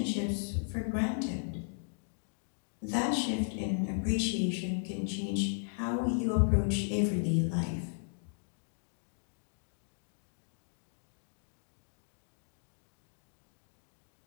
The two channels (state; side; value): silent; right; digital silence